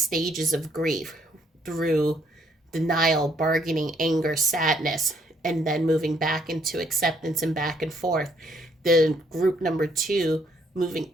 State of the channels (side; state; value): both; normal; correlation 0.69